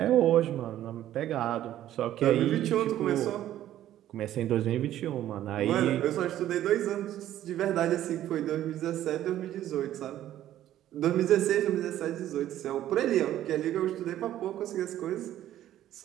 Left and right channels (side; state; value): left; quieter; 12.6 dB